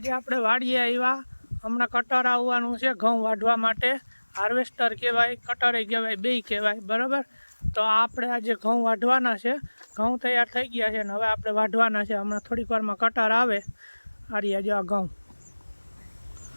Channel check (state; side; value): inverted; both; correlation -1.00